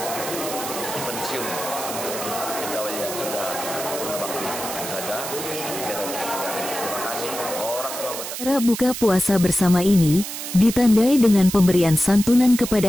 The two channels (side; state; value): right; noise; hiss, 7 dB below the sound